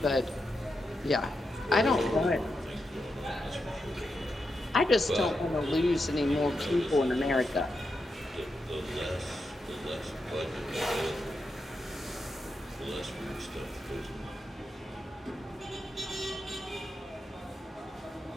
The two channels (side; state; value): both; normal; correlation 0.86